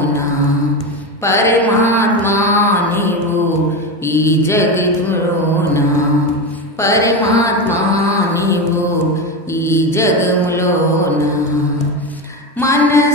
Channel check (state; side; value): normal; both; correlation 0.18